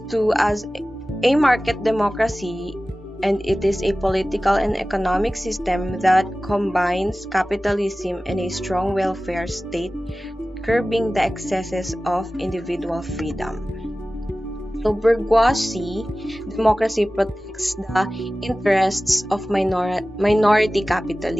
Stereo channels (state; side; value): normal; both; correlation 0.96